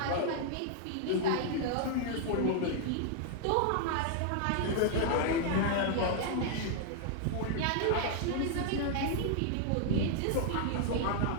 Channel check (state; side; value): different; both; correlation 0.00